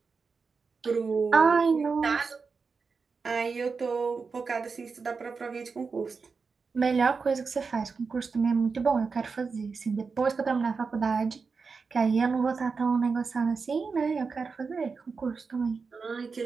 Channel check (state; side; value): quieter; left; 4.9 dB